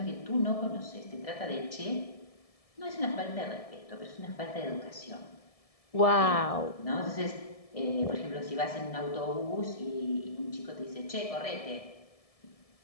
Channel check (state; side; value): late; right; 1.7 ms